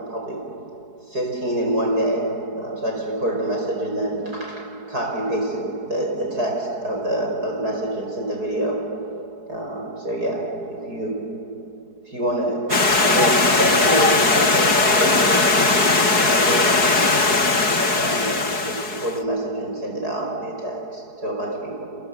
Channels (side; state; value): left; late; 4.7 ms